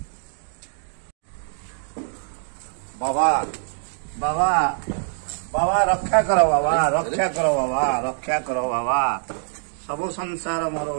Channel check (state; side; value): silent; left; digital silence